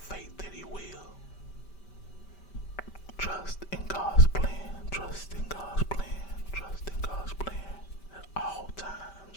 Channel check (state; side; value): late; right; 5.1 ms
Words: that He will. Trust in God's plan. Trust in God's plan. Trust in God's plan. At all